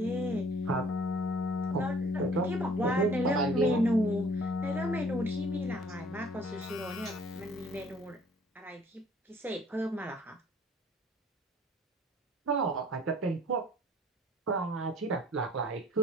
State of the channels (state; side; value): normal; both; correlation 0.55